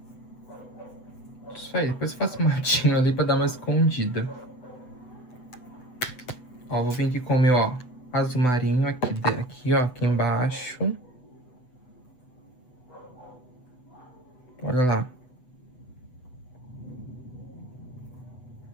Isso aí, depois eu faço um matinho ali pra dar uma escondida. Ó, vou vir aqui com o meu, ó, azul marinho aqui, ó, aqui embaixo. Olha lá.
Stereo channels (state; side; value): late; right; 8.0 ms